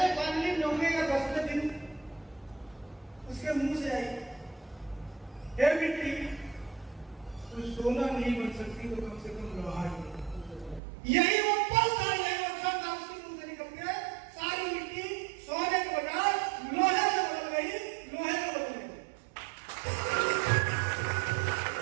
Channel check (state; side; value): drops out; left; at 10.8 s